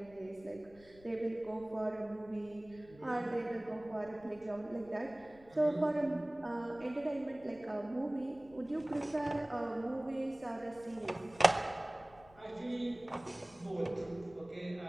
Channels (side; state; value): left; noise; rumble, 24 dB below the sound